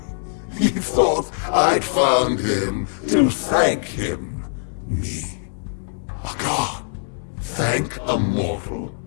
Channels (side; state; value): right; silent; digital silence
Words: He thought I'd found him to thank him. Me. A god. Thank a mortal.